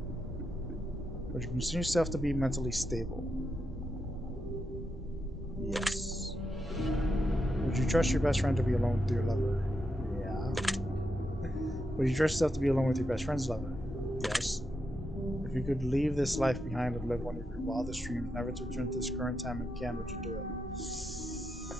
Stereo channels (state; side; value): normal; both; correlation 0.84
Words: Would you consider yourself to be mentally stable? Yes. Would you trust your best friend to be alone with your lover? Yeah. Would you trust yourself to be alone with your best friend's lover? Yes. If you could leave this life behind and live one of your wildest dreams, never to return to this current time again, would you do it?